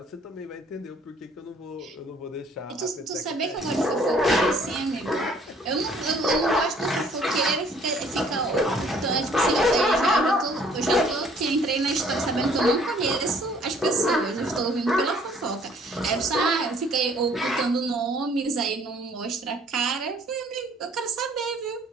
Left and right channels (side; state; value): both; normal; correlation 0.59